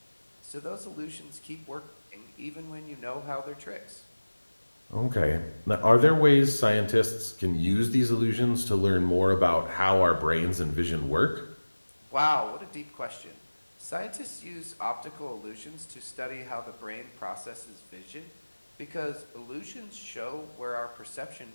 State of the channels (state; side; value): inverted; both; correlation -1.00